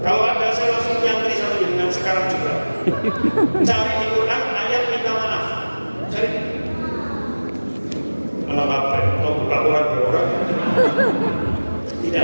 Kalau ada, saya langsung nyantri sama dengan sekarang juga. Cari di Quran ayat minta maaf. Cari. Malah apa? Mau buka Quran berorang? Tidak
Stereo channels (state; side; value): inverted; both; correlation -1.00